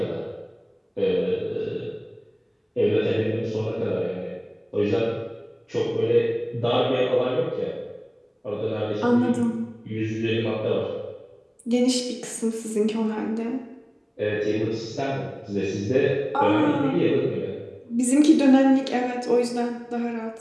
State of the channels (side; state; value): both; identical; correlation 1.00